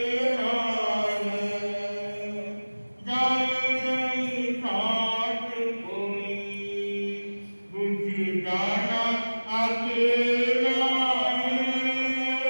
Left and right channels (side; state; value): both; inverted; correlation -1.00